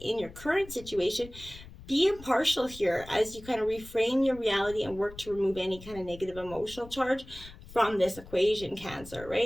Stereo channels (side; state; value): left; noise; rumble, 17 dB below the sound